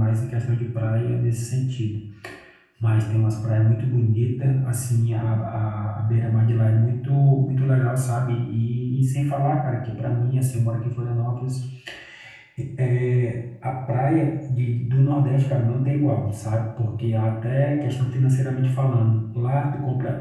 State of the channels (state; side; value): identical; both; correlation 1.00